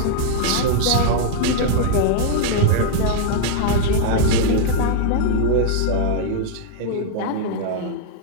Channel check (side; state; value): both; different; correlation -0.01